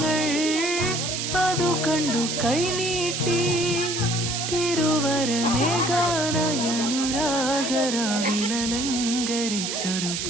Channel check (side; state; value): right; noise; hiss, 3 dB below the sound